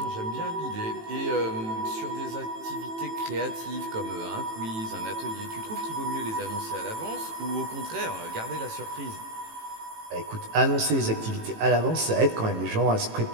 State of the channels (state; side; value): late; left; 18 ms